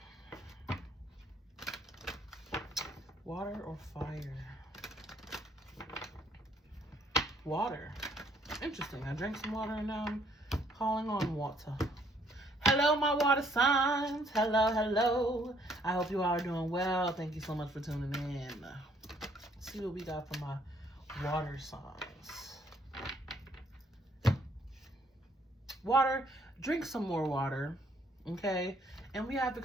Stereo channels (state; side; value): normal; both; correlation 0.65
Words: Water or fire? Water. Interesting. I drank some water and now I'm calling on water. Hello, my water signs. Hello, hello. I hope you all are doing well. Thank you so much for tuning in. Let's see what we got for my water signs. Water. Drink some more water. Okay? And we have